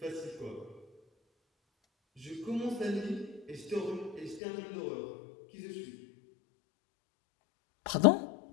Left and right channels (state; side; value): drops out; right; at 4.4 s